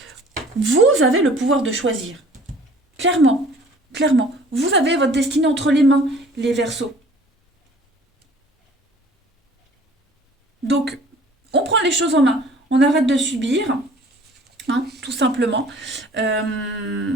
vous avez le pouvoir de choisir. Clairement, clairement. Vous avez votre destinée entre les mains, les Verseaux. Donc, on prend les choses en main. On arrête de subir, hein, tout simplement. Euh,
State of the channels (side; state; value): both; normal; correlation 0.51